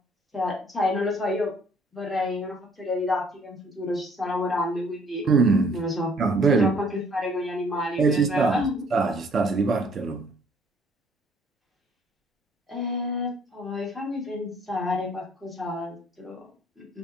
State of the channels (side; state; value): both; normal; correlation 0.60